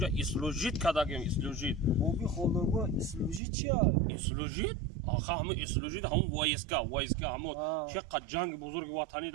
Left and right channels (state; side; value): drops out; left; at 3.4 s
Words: اسلوژیت کردم اسلوژیت بابی خالدارگاه اسلوژی چیه؟ اسلوژیت آخه همون اسلوژیت همون وایسکا همون چقدر جنگ بزرگ وطنی